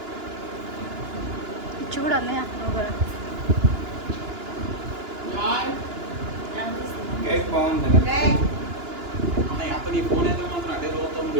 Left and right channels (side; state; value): left; late; 2.9 ms